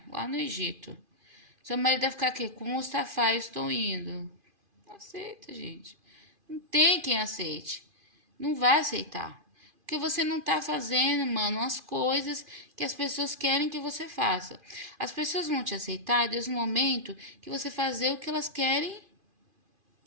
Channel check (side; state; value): left; late; 2.5 ms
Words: lá no Egito. Seu marido vai ficar aqui, com o Mustafa, eu estou indo. Não aceita, gente. Não tem quem aceite. Não vai aceitar. Porque você não tá fazendo, mano, as coisas que as pessoas querem que você faça. As pessoas vão te aceitar desde o momento que você fazer o que elas querem